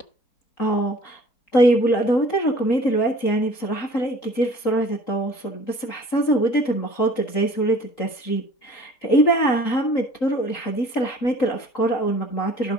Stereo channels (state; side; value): late; right; 3.9 ms